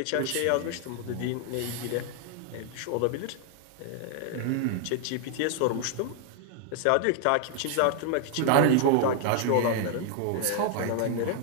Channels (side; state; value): both; different; correlation 0.00